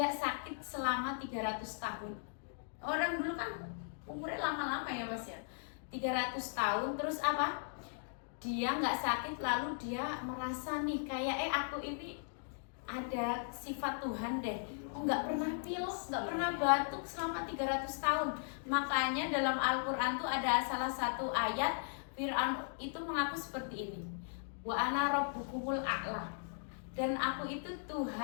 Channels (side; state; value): right; silent; digital silence